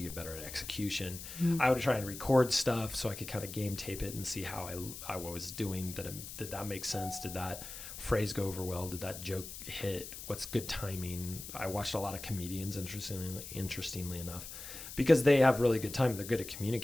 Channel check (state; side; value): noise; left; hiss, 11 dB below the sound